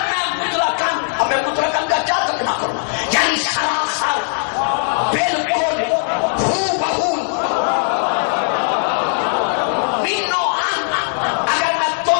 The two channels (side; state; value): right; silent; 64 dB below the other